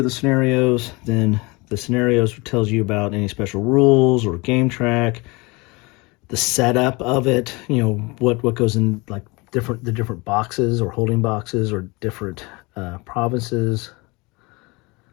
the scenarios. Then the scenarios tells you about any special rules or game track, the setup of it, you know, what goes in, like the different boxes or holding boxes or different provinces.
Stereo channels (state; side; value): quieter; right; 25.6 dB